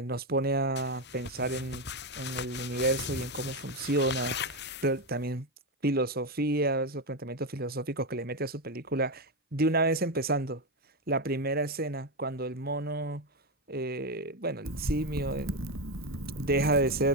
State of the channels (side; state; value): both; normal; correlation 0.10